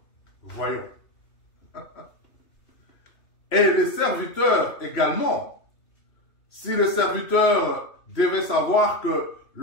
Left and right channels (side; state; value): right; late; 3.0 ms